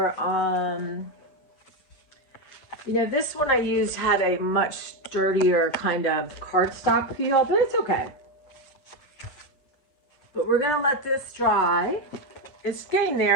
this one I used had a much sturdier kind of cardstock feel, but it's okay. But we're gonna let this dry. It's getting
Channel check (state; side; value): late; right; 8.0 ms